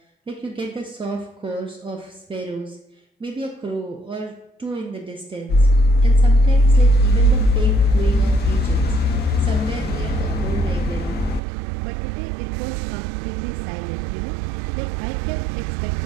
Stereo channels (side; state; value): left; drops out; at 11.4 s